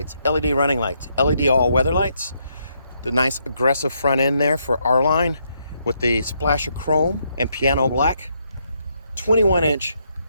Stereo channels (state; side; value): inverted; both; correlation -0.76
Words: LED running lights, LED all-weather lights, the nice aggressive front end there for R-Line with the splash of chrome and piano black, 21-inch